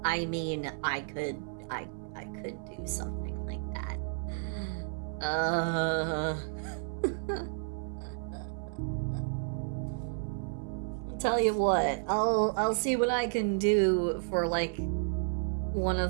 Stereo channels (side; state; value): left; silent; 56 dB below the other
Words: I mean, I could do something like that. I'll tell you what, I'll see what I can do for like one